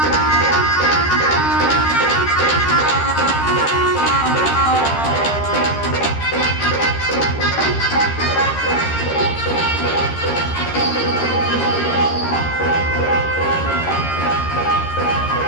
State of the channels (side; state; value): right; late; 13 ms